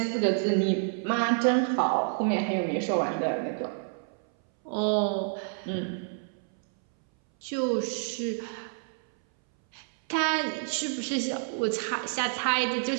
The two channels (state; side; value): silent; left; 59 dB below the other